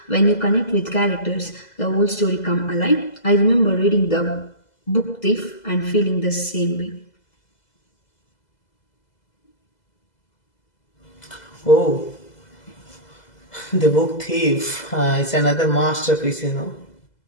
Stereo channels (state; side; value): late; right; 2.0 ms